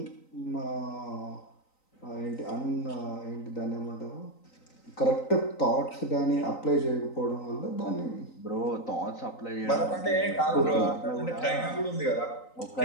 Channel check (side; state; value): right; late; 3.9 ms